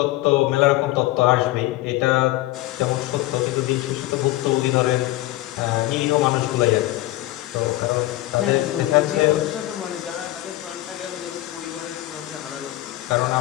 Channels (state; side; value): quieter; right; 17.0 dB